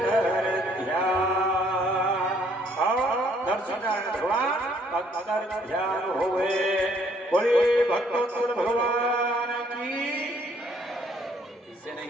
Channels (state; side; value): normal; both; correlation 0.65